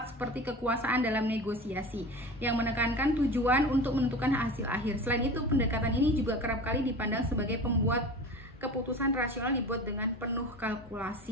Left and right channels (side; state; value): both; normal; correlation 0.34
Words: seperti kekuasaan dalam negosiasi yang menekankan tujuan untuk menentukan hasil akhir. Selain itu, pendekatan ini juga kerap kali dipandang sebagai pembuat keputusan rasional dibuat dengan penuh